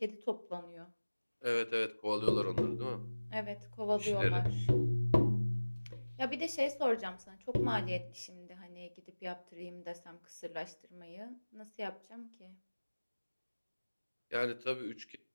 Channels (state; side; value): inverted; both; correlation -1.00